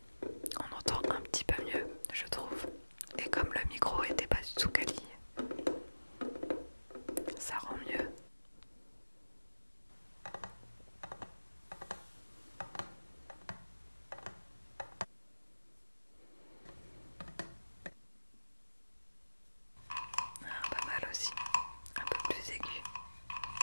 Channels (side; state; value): both; inverted; correlation -1.00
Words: On entend un petit peu mieux, je trouve. Et comme le micro était pas du tout quali, ça rend mieux. Ah, pas mal aussi, un peu plus aigu.